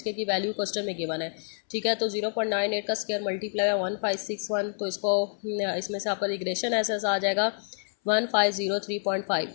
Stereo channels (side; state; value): right; silent; 59 dB below the other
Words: की वैल्यू क्वेश्चन में गिवन है, ठीक है। तो 0.98 का स्क्वायर मल्टीप्लाई 1561। तो इसमें से आपका रिग्रेशन एसेस आ जाएगा 1503.5।